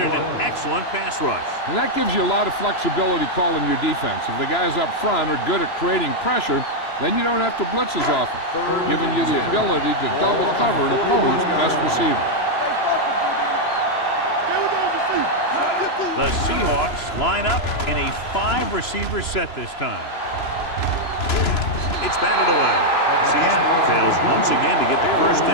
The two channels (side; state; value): right; late; 3.0 ms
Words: an excellent pass rush. And that gives you a lot of flexibility calling your defense. If the guys up front are good at creating pressure, then you don't have to blitz as often, giving you the ability to double cover an opponent's best receiver. The Seahawks line up in a 5-receiver set this time. It's batted away. Seattle fails once again to get the first